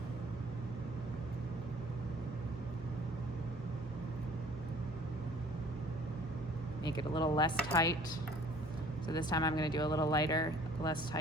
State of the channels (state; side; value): normal; both; correlation 0.53